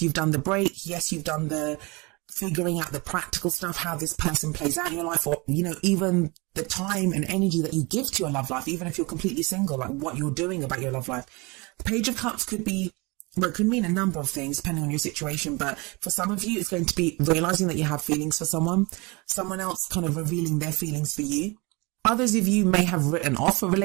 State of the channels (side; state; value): left; quieter; 26.4 dB